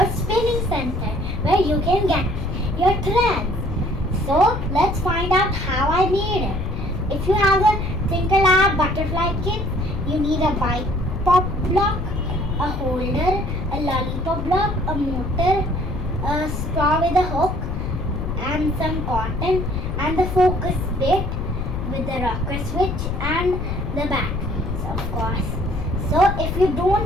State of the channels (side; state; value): left; noise; rumble, 3 dB below the sound